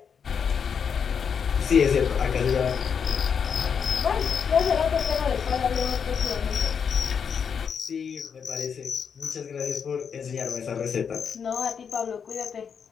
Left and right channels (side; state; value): right; quieter; 6.8 dB